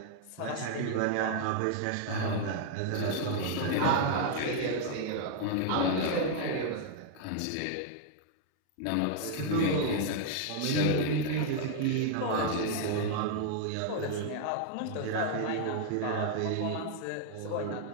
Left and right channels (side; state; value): both; different; correlation 0.00